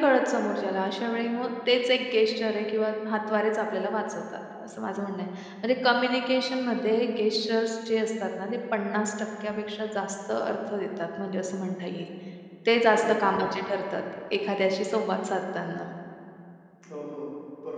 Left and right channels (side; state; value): both; identical; correlation 1.00